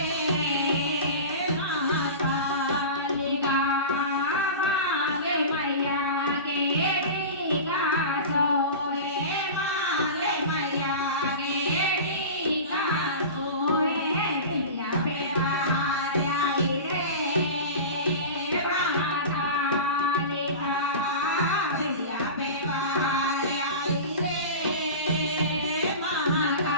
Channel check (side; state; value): both; inverted; correlation -0.31